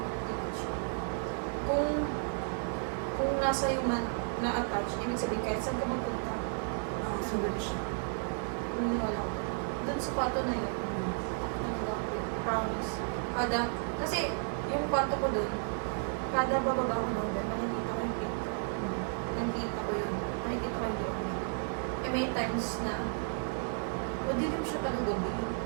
siya. Kung nasa iyo man na-attach, ibig sabihin kahit saan ka magpunta, Nakasunod siya. naniniwala ko. Doon sa kwarto na yun, promise. Kasi yung kwarto ko doon, kada bababa ko doon, makikita ko yung pinto. Nakikita ko yun. Nakikita ko yung doon. Eh may times na, madilim siya talaga gabi.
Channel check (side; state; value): left; silent; 56 dB below the other